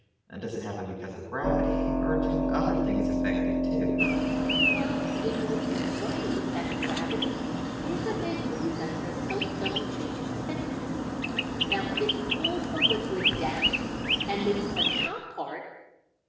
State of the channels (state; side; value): identical; both; correlation 1.00